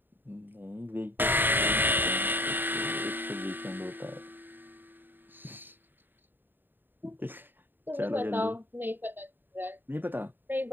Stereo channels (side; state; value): left; late; 0.094 ms